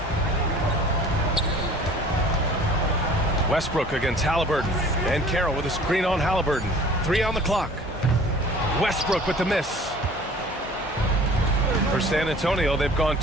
Westbrook against Halliburton. And Carroll with a screen on Halliburton. 3 on the clock. Westbrook with the miss. For San Antonio, they've gone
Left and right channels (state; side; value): normal; both; correlation 0.48